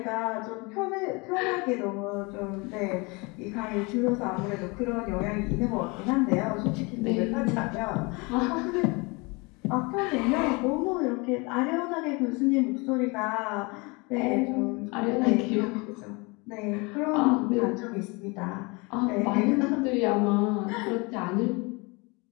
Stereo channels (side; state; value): right; quieter; 27.7 dB